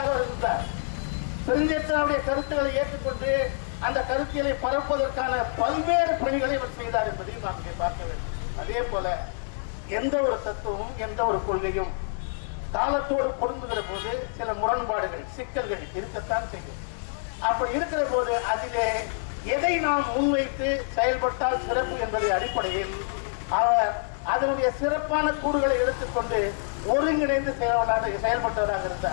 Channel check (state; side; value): silent; right; digital silence